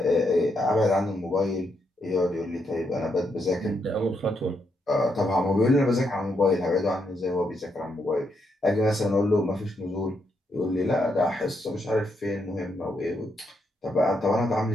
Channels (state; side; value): normal; both; correlation 0.79